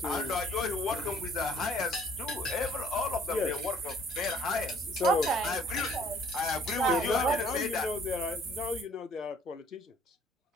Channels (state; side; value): normal; both; correlation 0.58